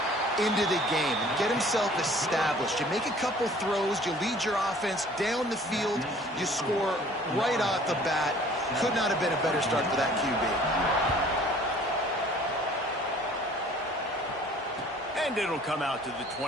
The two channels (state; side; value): normal; both; correlation 0.52